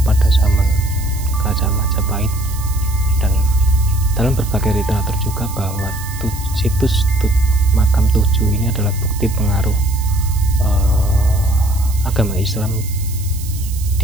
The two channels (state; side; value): noise; right; hiss, 14 dB below the sound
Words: pada zaman Kerajaan Majapahit, dan dalam berbagai literatur juga bahwa situs makam 7 ini adalah bukti pengaruh agama Islam